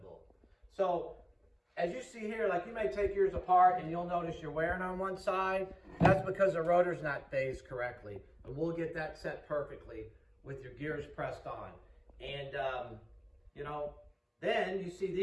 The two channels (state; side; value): identical; both; correlation 1.00